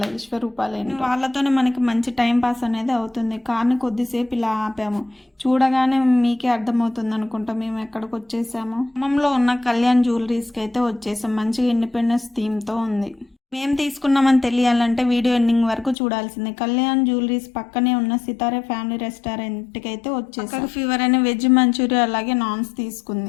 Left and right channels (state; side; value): drops out; right; at 16.0 s